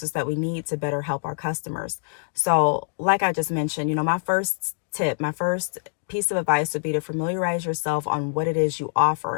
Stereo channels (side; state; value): right; silent; digital silence